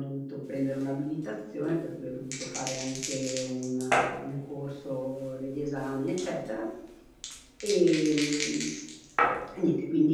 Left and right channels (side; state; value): both; identical; correlation 1.00